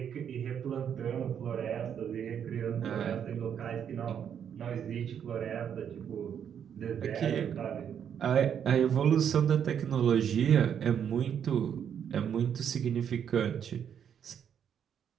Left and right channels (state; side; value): quieter; left; 8.4 dB